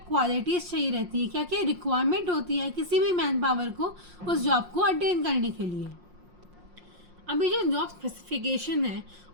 चाहिए रहती है, क्या क्या रिक्वायरमेंट होती है किसी भी मैन पावर को उस जॉब को अटेन करने के लिए। अभी जो जॉब स्पेसिफिकेशन है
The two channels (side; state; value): left; late; 5.6 ms